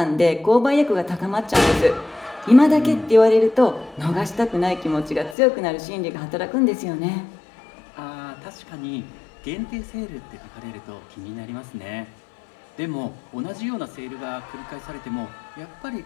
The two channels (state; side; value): drops out; right; at 5.4 s